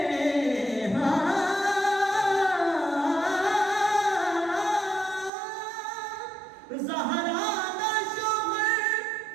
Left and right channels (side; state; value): left; drops out; at 5.3 s